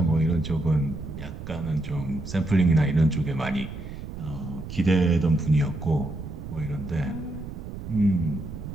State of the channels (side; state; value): right; noise; rumble, 10 dB below the sound